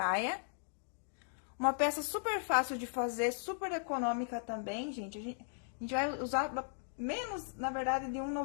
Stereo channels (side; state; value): right; silent; digital silence